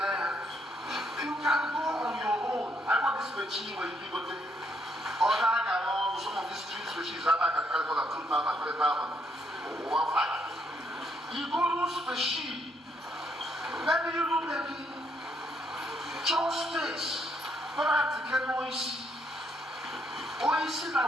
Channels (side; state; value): both; normal; correlation 0.73